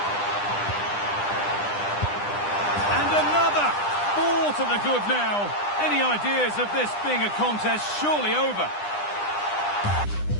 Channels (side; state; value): right; late; 9.9 ms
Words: And another! 4 to the good now. Any ideas of this being a contest surely over?